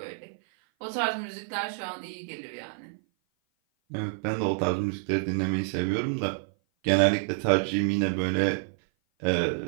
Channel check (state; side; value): silent; left; 56 dB below the other